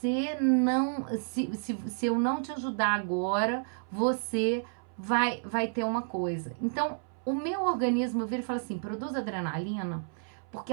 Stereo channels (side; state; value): left; silent; 57 dB below the other